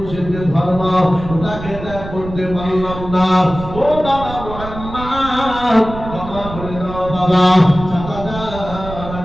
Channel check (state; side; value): noise; right; rumble, 11 dB below the sound